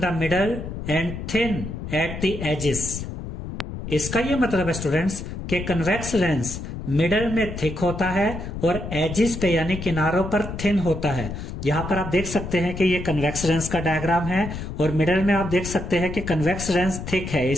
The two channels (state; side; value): noise; left; rumble, 7 dB below the sound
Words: middle and thin at the edges. इसका यह मतलब है स्टूडेंट्स कि कन्वेक्स लेंस मिडल में थिक होता है और एजिस पे यानी किनारों पर थिन होता है। यहां पर आप देख सकते हैं कि ये कन्वेक्स लेंस का डायग्राम है और मिडल में आप देख सकते हैं कि कन्वेक्स लेंस थिक है,